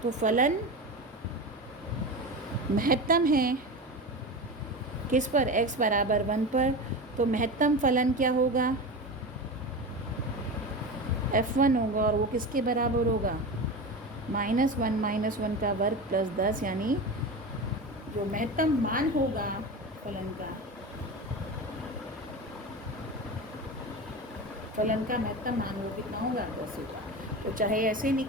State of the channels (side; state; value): both; normal; correlation 0.25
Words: तो फलन महत्तम है किस पर, x बराबर 1 पर। तो महत्तम फलन क्या होगा, f1 होगा, और वो किसके बराबर होगा, -1 - 1 का वर्ग प्लस 10, यानी जो महत्तम मान होगा फलन का महत्तम मान वो कितना होगा, 10 होगा। तो चाहे ऐसे